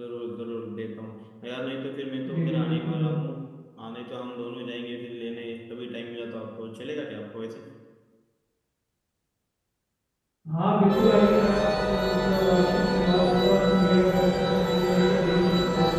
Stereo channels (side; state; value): both; identical; correlation 1.00